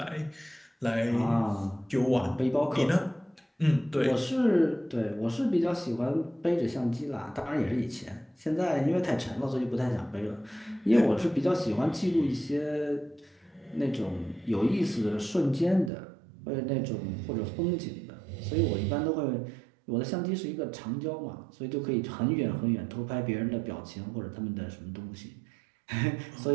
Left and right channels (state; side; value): drops out; left; at 15.9 s